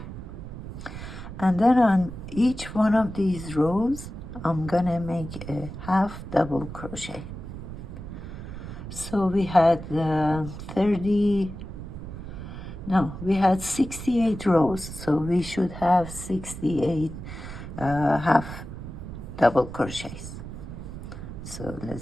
And then on each one of these rows, I'm gonna make a half double crochet. So we had we had 68 rows, so we should have 68 half double crochets. So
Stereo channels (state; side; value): noise; right; rumble, 10 dB below the sound